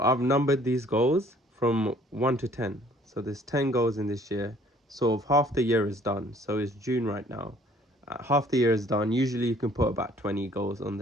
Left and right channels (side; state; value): both; normal; correlation 0.57